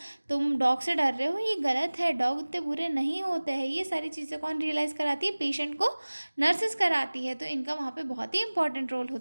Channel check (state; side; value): inverted; both; correlation -1.00